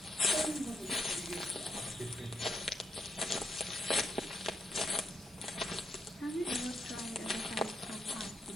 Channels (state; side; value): normal; both; correlation 0.79